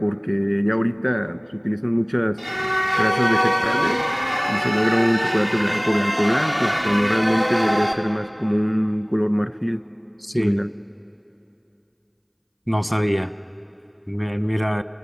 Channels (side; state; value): both; identical; correlation 1.00